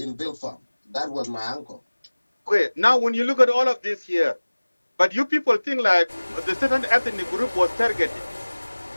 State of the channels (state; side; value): inverted; both; correlation -1.00